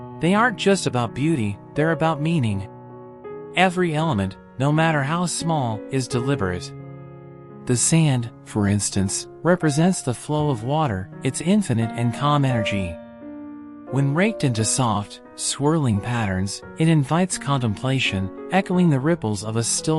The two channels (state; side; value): identical; both; correlation 1.00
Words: They aren't just about beauty, they're about meaning. Every element, no matter how small, is deliberate. The sand, for instance, represents the flow of water, its infinite and calm energy. When raked into soft, swirling patterns, it invites contemplation, echoing the ripples of a